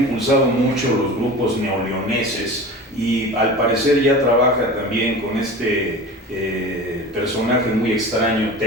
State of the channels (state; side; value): normal; both; correlation 0.35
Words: mucho los grupos neoleoneses, y al parecer ya trabaja también con este personaje muy extraño,